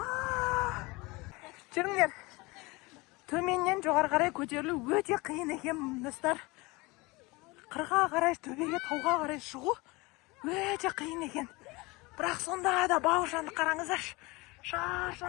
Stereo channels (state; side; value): quieter; right; 24.0 dB